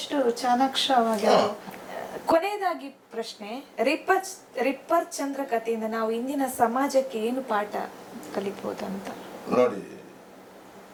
ಚಾಣಾಕ್ಷವಾಗಿ. ಕೊನೆಯದಾಗಿ ಪ್ರಶ್ನೆ, ರಿಪ್ಪರ್ ಚಂದ್ರ ಕಥೆಯಿಂದ ನಾವು ಇಂದಿನ ಸಮಾಜಕ್ಕೆ ಏನು ಪಾಠ ಕಲಿಬಹುದಂತ ನೋಡಿ.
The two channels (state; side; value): identical; both; correlation 1.00